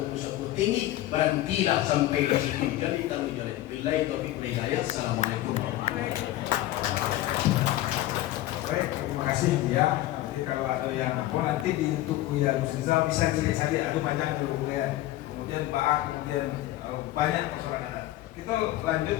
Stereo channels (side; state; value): right; quieter; 15.3 dB